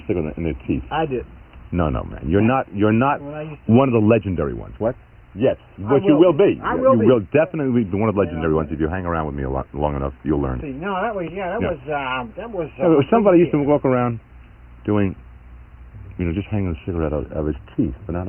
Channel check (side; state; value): both; identical; correlation 1.00